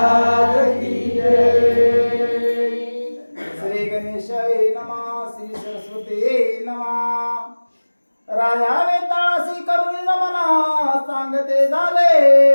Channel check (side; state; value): both; inverted; correlation -1.00